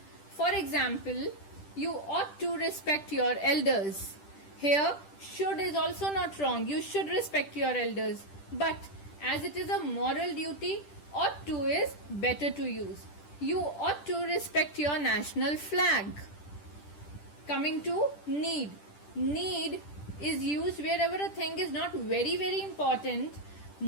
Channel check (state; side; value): late; right; 10 ms